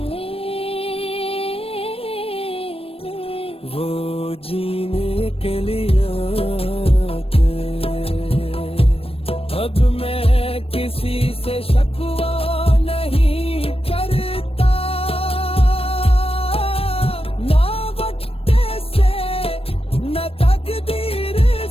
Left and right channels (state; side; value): late; right; 0.28 ms